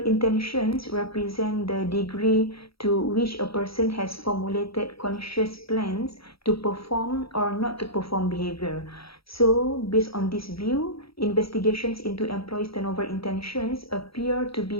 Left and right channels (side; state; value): right; late; 0.76 ms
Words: intentions represent the degree to which a person has formulated conscious plans to perform or not to perform behavior. So, based on this view, investigations into employees' turnover intentions appear to